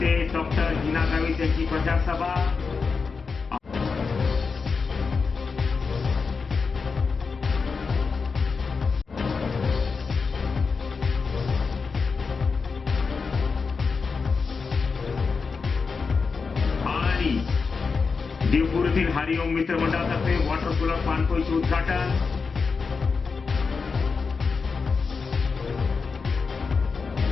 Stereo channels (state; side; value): quieter; right; 4.9 dB